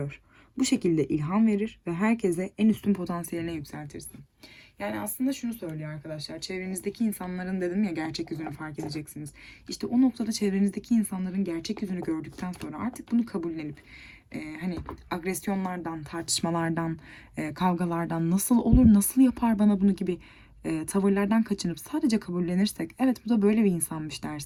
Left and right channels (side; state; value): both; identical; correlation 1.00